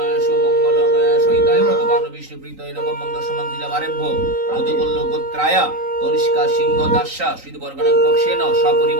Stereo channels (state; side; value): late; left; 3.9 ms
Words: সুমঙ্গলম সহিতায় ভগবান বিষ্ণু প্রীতয় নবম মঙ্গল সমান্তিরা বারেভ্য মধুকল্ল গোত্রায়া তনিষ্কা সিংহ দাস্যা শ্রীবর্গণং পক্ষেন